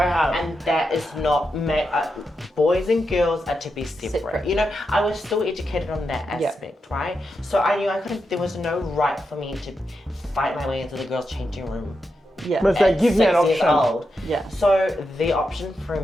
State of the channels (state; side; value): normal; both; correlation 0.86